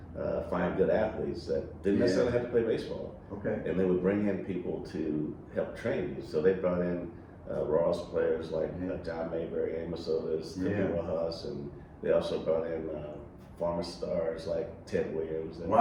find good athletes that didn't necessarily have to play baseball. Okay. And they would bring in people to help train you. So they brought in Ross players like John Mayberry, Amos Otis, Timmy Rojas, and they also brought in former stars like Ted Williams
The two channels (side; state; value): both; identical; correlation 1.00